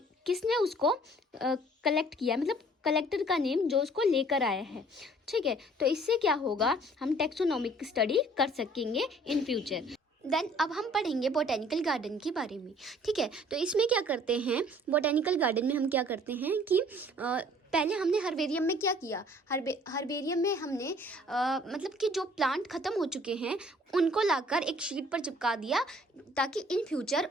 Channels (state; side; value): normal; both; correlation 0.55